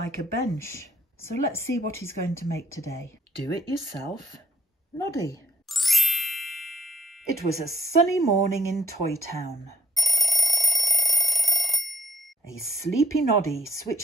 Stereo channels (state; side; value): normal; both; correlation 0.74